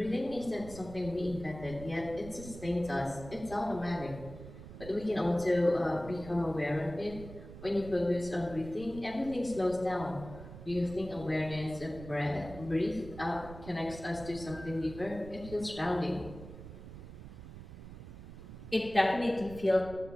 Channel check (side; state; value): right; noise; rumble, 13 dB below the sound